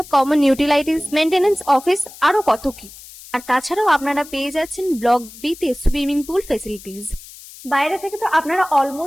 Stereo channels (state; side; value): noise; left; hiss, 18 dB below the sound